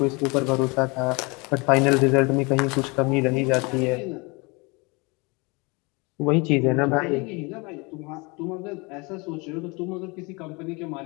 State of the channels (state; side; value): quieter; right; 27.8 dB